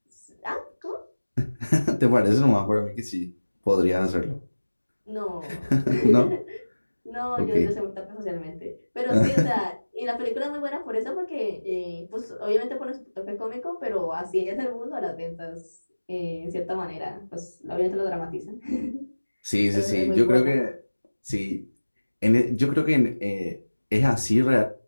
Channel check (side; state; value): both; inverted; correlation -1.00